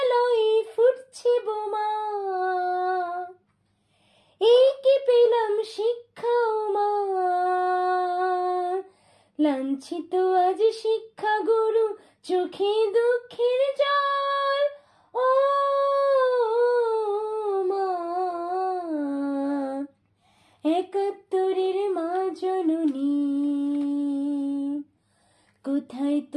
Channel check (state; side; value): identical; both; correlation 1.00